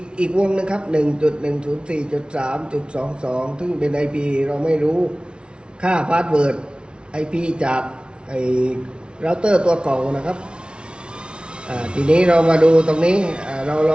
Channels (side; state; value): left; late; 0.056 ms